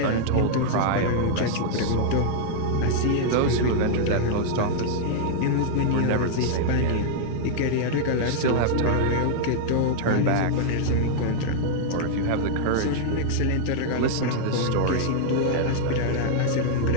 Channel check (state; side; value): different; both; correlation -0.01